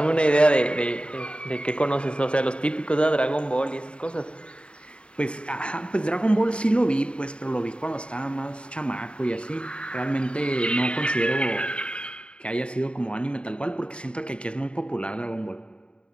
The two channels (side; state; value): right; late; 0.055 ms